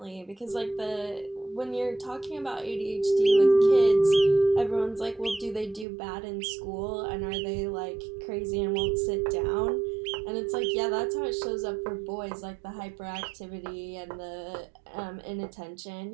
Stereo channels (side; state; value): left; drops out; at 5.9 s